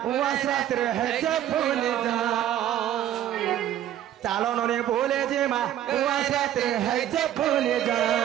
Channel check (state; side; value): quieter; left; 11.6 dB